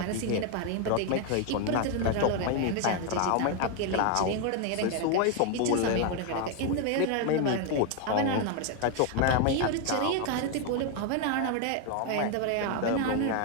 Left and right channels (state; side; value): different; both; correlation 0.01